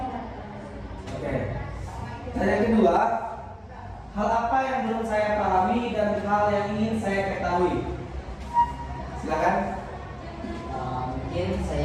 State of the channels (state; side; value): identical; both; correlation 1.00